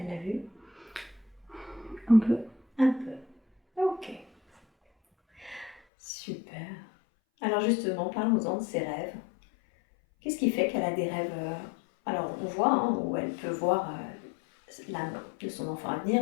l'a vu? Un peu. Un peu. Ok. Super. Alors justement, parlons-en de ses rêves. Qu'est-ce qui fait qu'elle a des rêves Alors on voit où elle peut voir l'âme de son enfant à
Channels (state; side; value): drops out; right; at 5.8 s